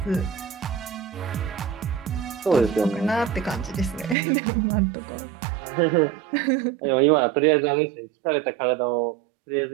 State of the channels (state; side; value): drops out; left; at 4.2 s